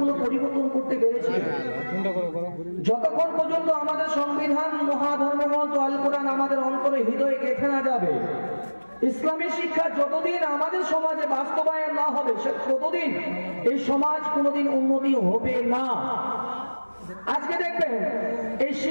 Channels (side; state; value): both; inverted; correlation -1.00